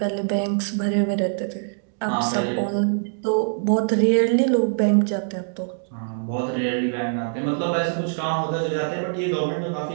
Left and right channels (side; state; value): left; silent; digital silence